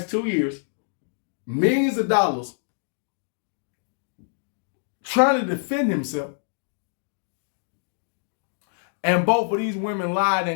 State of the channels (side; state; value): right; silent; digital silence